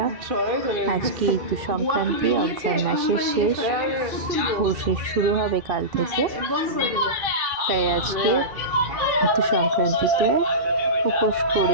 আজকে ঋতু সংক্রান্তি, অঘ্রাণ মাসের শেষ, পৌষের শুরু হবে কাল থেকে। তাই আজকে ঋতু সংক্রান্তিতে উপোস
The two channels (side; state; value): left; late; 2.7 ms